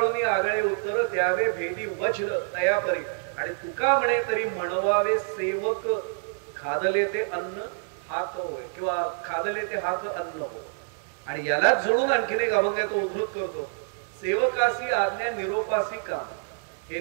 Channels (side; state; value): left; silent; 60 dB below the other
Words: आगळे उत्तर द्यावे भेदी वज्र तयापरी. आणि तुका म्हणे तरी म्हणवावे सेवक, खादले ते अन्न हात होय, किंवा खादले ते हात अन्न हो. आणि यालाच जोडून आणखीन एक अभंग तो उद्धृत करतो, सेवकासी आज्ञा निरोपासी काम. हे